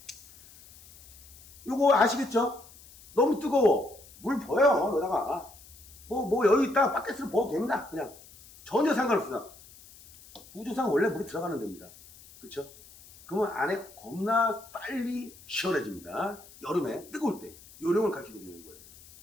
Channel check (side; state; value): left; noise; hiss, 22 dB below the sound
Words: 요거 아시겠죠? 너무 뜨거워 물 부어요. 여기다가 뭐 여유 있다 바켓으로 부어도 됩니다. 그냥 전혀 상관없습니다. 우주상 원래 물이 들어가는 데입니다. 그렇죠? 그러면 안에 겁나 빨리 시원해집니다. 여름에 뜨거울 때 요령을 가르쳐 드리는 거예요.